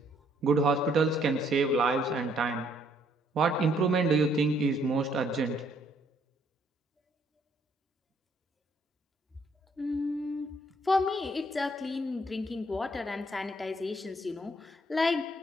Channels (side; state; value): both; normal; correlation 0.67